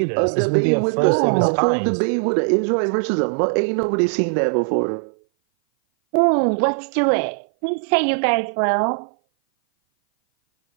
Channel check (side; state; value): left; silent; 57 dB below the other